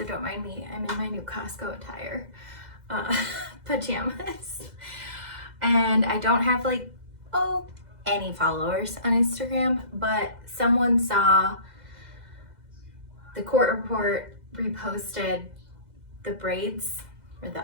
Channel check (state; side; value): late; left; 2.0 ms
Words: don't mind me. I'm in my new Costco attire, pajamas. And I don't have like, any followers on Instagram, but someone saw the court report reposted the braids or the